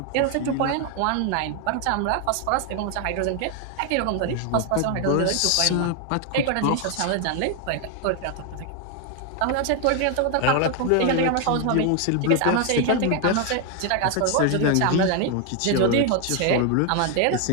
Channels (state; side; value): different; both; correlation 0.01